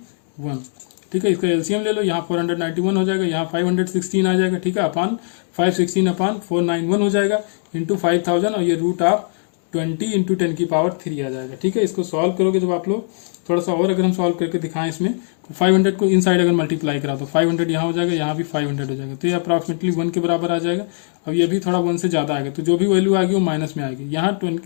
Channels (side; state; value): right; silent; digital silence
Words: ठीक है। इसका एलसीएम ले लो, यहाँ 491 हो जाएगा, यहाँ 516 आ जाएगा, ठीक है, अपॉन 516 अपॉन 491 हो जाएगा इंटू 5000, और ये रूट ऑफ 20 इंटू 10 की पावर 3 आ जाएगा, ठीक है। इसको सॉल्व करोगे जब आप लोग, थोड़ा सा और अगर हम सॉल्व करके दिखाएं इसमें, तो 500 को इनसाइड अगर मल्टीप्लाई करा तो 500 यहाँ हो जाएगा, यहाँ भी 500 हो जाएगा, तो ये अप्रॉक्सीमेटली 1 के बराबर आ जाएगा। अब ये भी थोड़ा 1 से ज़्यादा आएगा, तो जो भी वैल्यू आएगी वो माइनस में आएगी। यहाँ